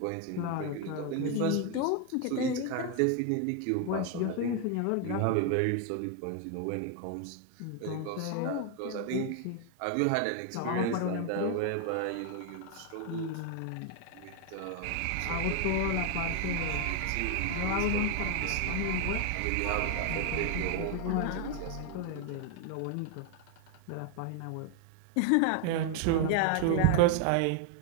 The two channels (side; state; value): both; different; correlation 0.01